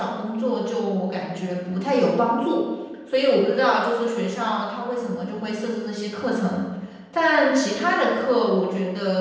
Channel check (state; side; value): identical; both; correlation 1.00